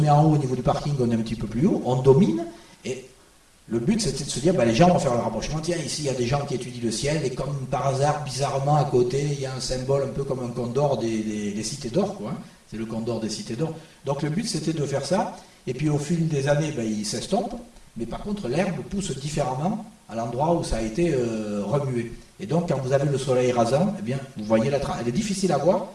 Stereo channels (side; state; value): both; identical; correlation 1.00